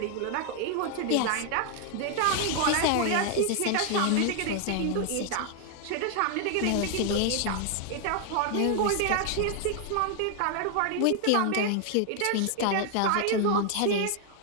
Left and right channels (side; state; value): both; different; correlation 0.00